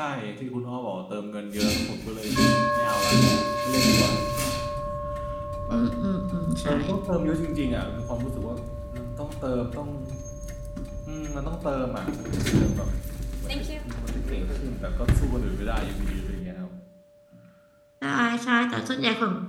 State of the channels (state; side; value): identical; both; correlation 1.00